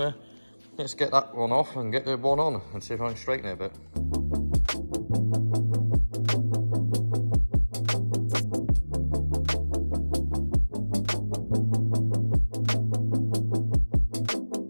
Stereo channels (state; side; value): inverted; both; correlation -1.00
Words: let's get that one off and get the one on and see if I can straighten it a bit.